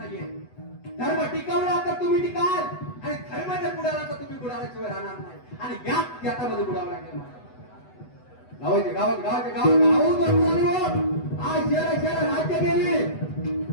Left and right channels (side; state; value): right; late; 8.0 ms